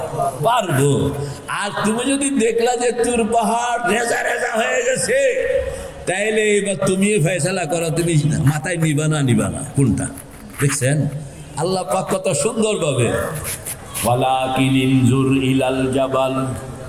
পারবো। আর তুমি যদি দেখলা যে তুর পাহাড় রেজা রেজা হয়ে গেছে, তাইলে এবার তুমি ফয়সালা করো, তুমি মাথায় নিবা না কোনটা। দেখছেন আল্লাহ পাক কত সুন্দরভাবে, ওয়ালাকিন ইনজুর ইলাল জাবাল,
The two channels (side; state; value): both; identical; correlation 1.00